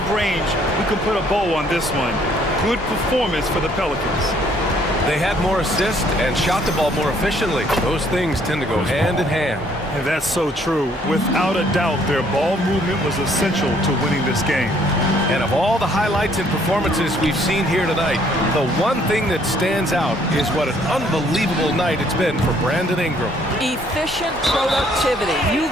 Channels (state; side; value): normal; both; correlation 0.64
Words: range, we can put a bow on this one. Good performance for the Pelicans. They had more assists and shot the ball more efficiently. Those things tend to go hand in hand. And that's so true. Without a doubt, their ball movement was essential to winning this game. And of all the highlights and performances we've seen here tonight, the one thing that stands out is what an unbelievable night it's been for Brandon Ingram. Efficient productivity. You